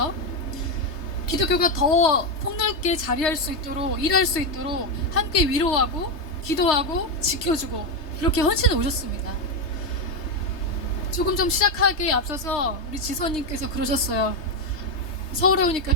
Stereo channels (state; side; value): late; right; 3.3 ms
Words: 기독교가 더 폭넓게 자리할 수 있도록, 일할 수 있도록 함께 위로하고 기도하고 지켜주고 이렇게 헌신해 오셨습니다. 조금 좀 시작하기에 앞서서 우리 지선님께서 그러셨어요. 서울에 오니까